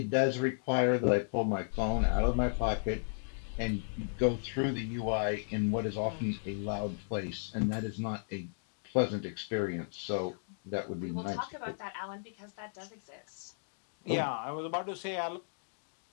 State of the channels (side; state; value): right; silent; digital silence